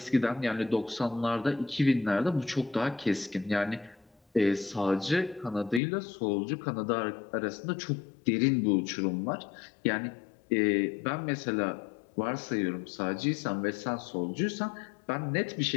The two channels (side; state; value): right; drops out; at 5.8 s